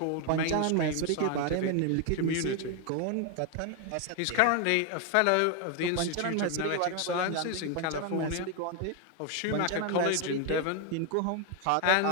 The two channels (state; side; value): different; both; correlation 0.01